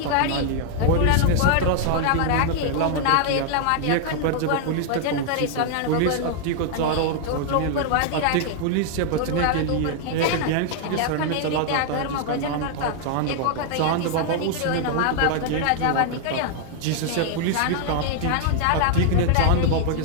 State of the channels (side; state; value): both; different; correlation 0.00